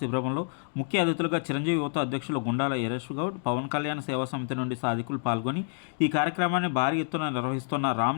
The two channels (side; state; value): right; silent; 59 dB below the other